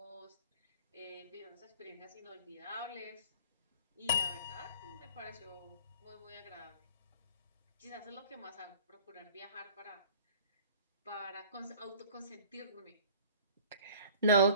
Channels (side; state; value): both; inverted; correlation -0.48